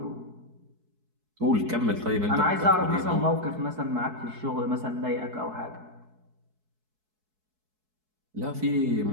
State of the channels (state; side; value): late; left; 4.6 ms